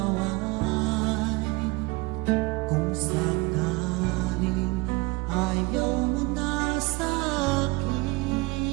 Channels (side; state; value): left; quieter; 24.4 dB